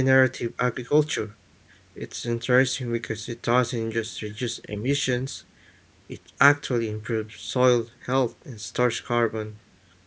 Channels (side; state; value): both; identical; correlation 1.00